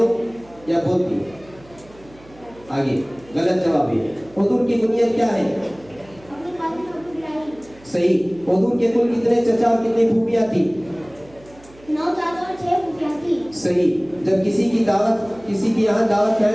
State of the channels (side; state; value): right; noise; hum, 24 dB below the sound